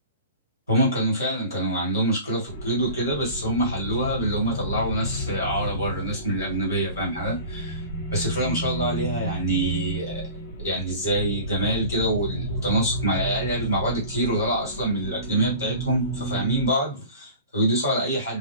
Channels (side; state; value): both; inverted; correlation -0.39